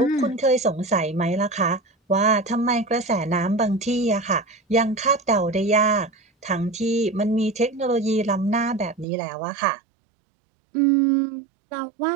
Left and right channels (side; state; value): left; drops out; at 9.1 s